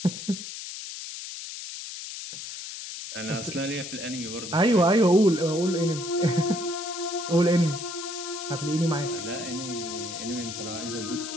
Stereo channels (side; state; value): left; noise; hiss, 9 dB below the sound